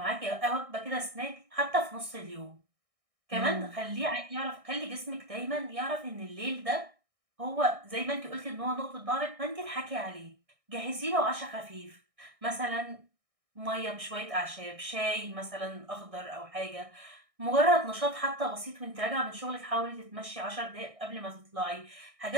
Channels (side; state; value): left; late; 1.6 ms